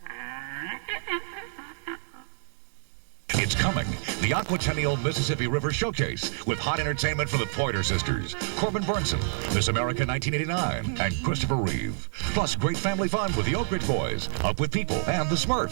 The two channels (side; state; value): left; silent; digital silence